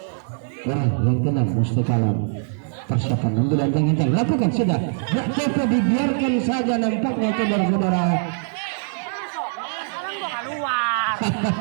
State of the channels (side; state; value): left; silent; digital silence